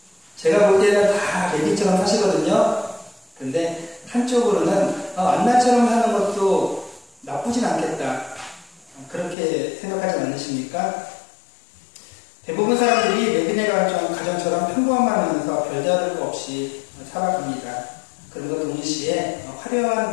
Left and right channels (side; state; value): right; drops out; at 9.3 s